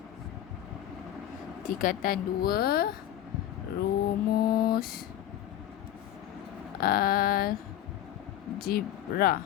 tingkatan 2, rumus algebra.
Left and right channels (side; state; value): right; quieter; 11.9 dB